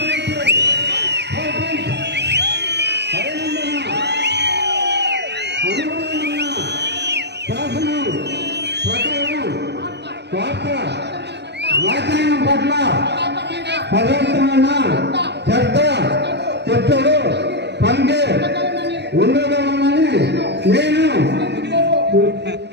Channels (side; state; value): left; late; 0.50 ms